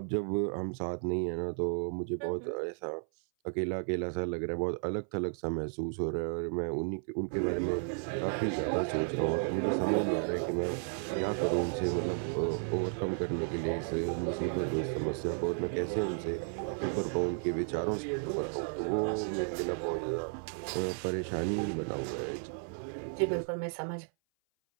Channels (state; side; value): silent; left; 55 dB below the other